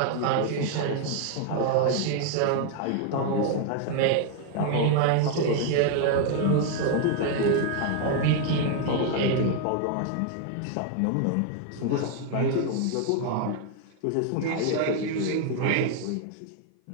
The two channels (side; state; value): both; different; correlation 0.00